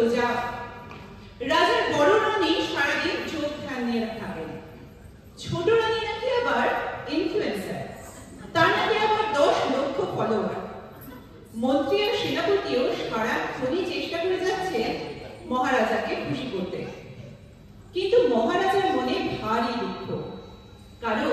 রাজার বড় রানী সারাদিন চোখ ধ্যান নিয়ে থাকেন। ছোট রানী নাকি আবার ইনফ্লুয়েন্সার, তার নাকি আবার 10 লক্ষ ফলোয়ার। মন্ত্রী আর সেনাপতিও সারাক্ষণই চেষ্টা করে যাচ্ছে মহারাজাকে খুশি করতে, কিন্তু মহারাজার মনে ভারী দুঃখ,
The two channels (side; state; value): both; identical; correlation 1.00